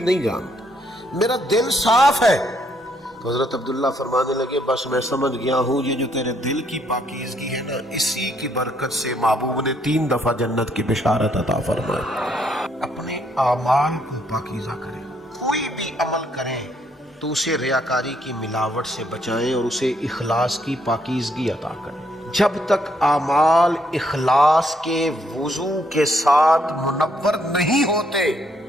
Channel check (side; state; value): both; normal; correlation 0.71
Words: نہیں جانتا، میرا دل صاف ہے۔ تو حضرت عبداللہ فرمانے لگے بس میں سمجھ گیا ہوں یہ جو تیرے دل کی پاکیزگی ہے نا، اسی کی برکت سے محبوب نے 3 دفعہ جنت کی بشارت عطا فرمائی۔ اپنے اعمال کو پاکیزہ کریں، کوئی بھی عمل کریں تو اسے ریاکاری کی ملاوٹ سے بچائیں اور اسے اخلاص کی پاکیزگی عطا کریں۔ جب تک اعمال اخلاص کے وضو کے ساتھ منور نہیں ہوتے